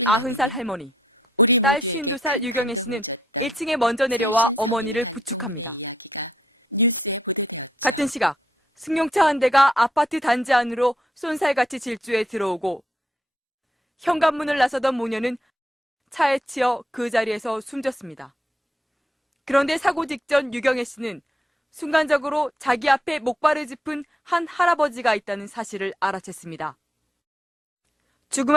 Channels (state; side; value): normal; both; correlation 0.74